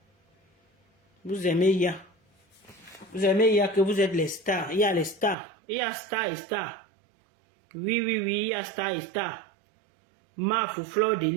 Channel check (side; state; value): left; drops out; at 5.4 s